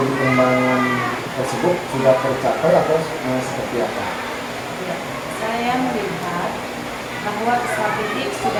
pengembangan tersebut sudah tercapai atau seperti apa? Ya, saya melihat bahwa peserta didik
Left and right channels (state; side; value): identical; both; correlation 1.00